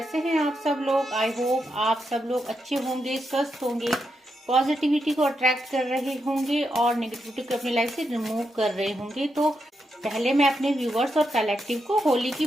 हैं आप सब लोग। आई होप आप सब लोग अच्छे होंगे, स्वस्थ होंगे, पॉजिटिविटी को अट्रैक्ट कर रहे होंगे और नेगेटिविटी को अपनी लाइफ से रिमूव कर रहे होंगे। तो पहले मैं अपने व्यूवर्स और कलेक्टिव को होली की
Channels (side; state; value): both; normal; correlation 0.83